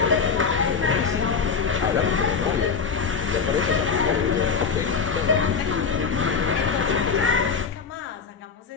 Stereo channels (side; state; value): right; quieter; 5.7 dB